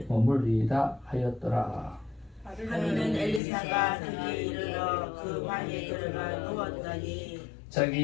머물리이다 하였더라. 하루는 엘리사가 그에게 이르러 그 방에 들어가 누웠더니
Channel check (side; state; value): right; drops out; at 3.4 s